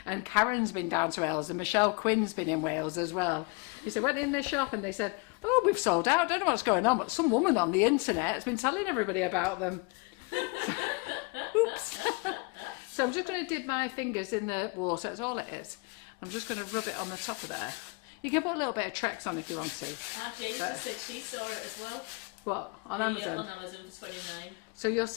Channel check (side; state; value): right; quieter; 29.7 dB